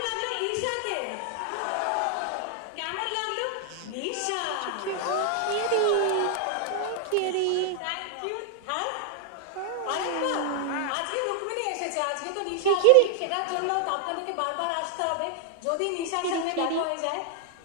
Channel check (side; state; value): both; different; correlation 0.00